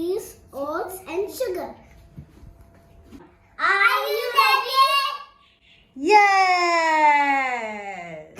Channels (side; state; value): both; identical; correlation 1.00